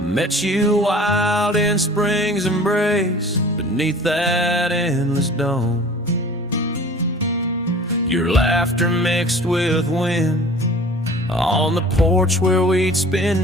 you wild in spring's embrace, beneath that endless dome. Your laughter mixed with wind, on the porch where we'd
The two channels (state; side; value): normal; both; correlation 0.44